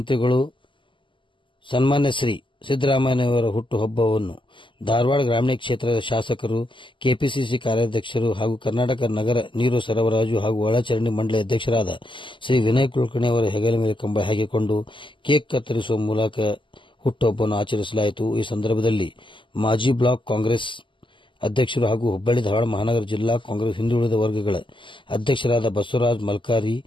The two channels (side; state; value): right; late; 0.24 ms